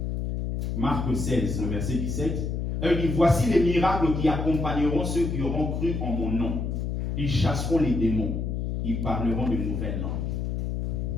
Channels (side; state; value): left; noise; hum, 2 dB below the sound